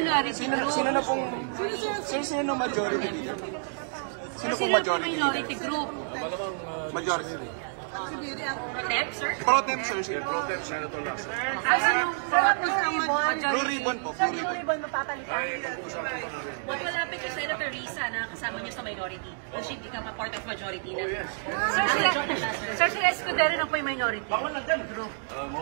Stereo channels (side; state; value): left; silent; digital silence